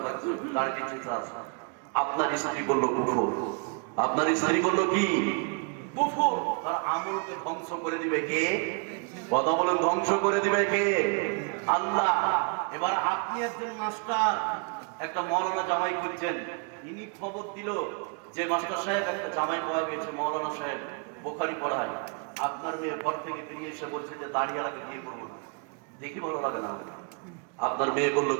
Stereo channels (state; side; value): quieter; left; 36.1 dB